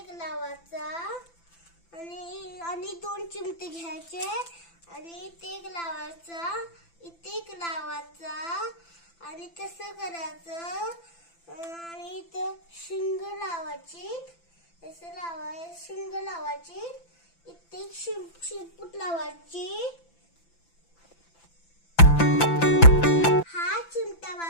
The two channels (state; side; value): late; right; 5.9 ms